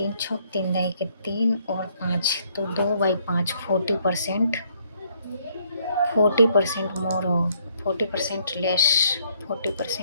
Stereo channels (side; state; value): both; inverted; correlation -0.68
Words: छः 3 दही के 3 और 5, तो 2/5 40%। 40% मोर हो, 40% less,